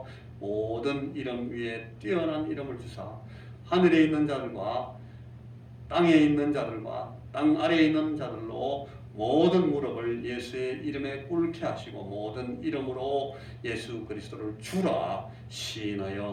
모든 이름 위에 뛰어난 이름을 주사 하늘에 있는 자들과 땅에 있는 자들과 땅 아래에 있는 자들로 모든 무릎을 예수의 이름에 꿇게 하시고 모든 이름으로 예수 그리스도를 주라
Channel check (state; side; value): identical; both; correlation 1.00